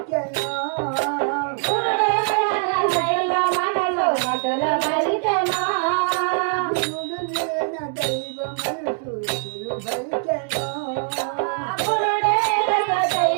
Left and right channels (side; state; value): left; silent; 64 dB below the other